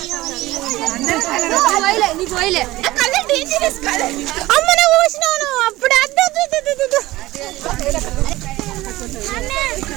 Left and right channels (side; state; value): left; quieter; 17.9 dB